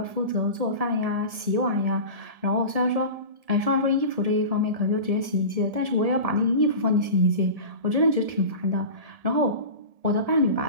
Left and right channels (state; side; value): late; left; 1.7 ms